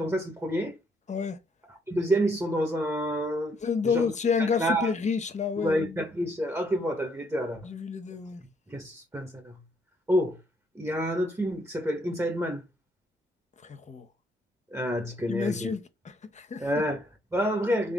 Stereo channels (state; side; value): normal; both; correlation 0.70